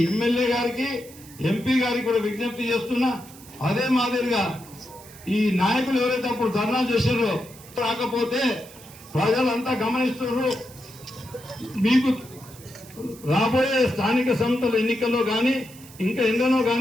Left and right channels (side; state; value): right; noise; hiss, 20 dB below the sound